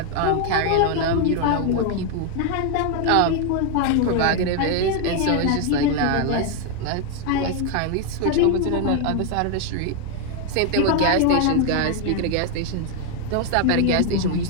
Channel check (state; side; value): different; both; correlation 0.01